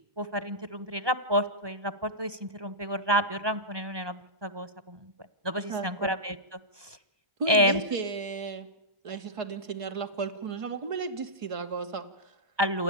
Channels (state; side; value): late; left; 1.2 ms